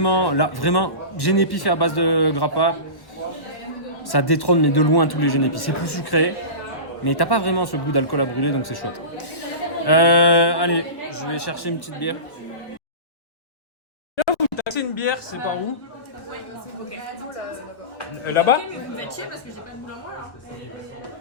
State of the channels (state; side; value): late; right; 1.4 ms